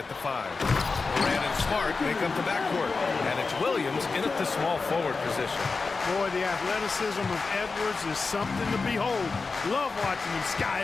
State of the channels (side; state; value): right; quieter; 4.2 dB